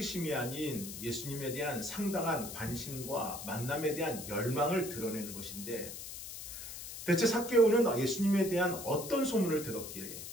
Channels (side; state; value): left; noise; hiss, 10 dB below the sound